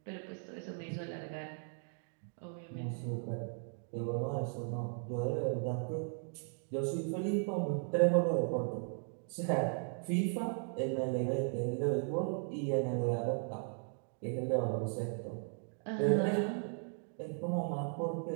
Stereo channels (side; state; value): left; silent; 53 dB below the other